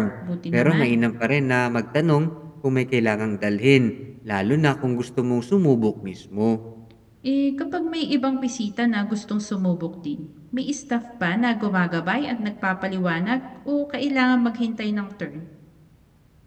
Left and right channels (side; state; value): both; identical; correlation 1.00